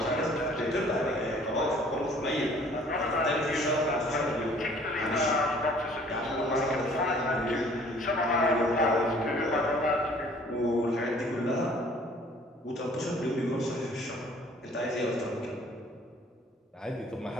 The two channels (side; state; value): both; normal; correlation 0.55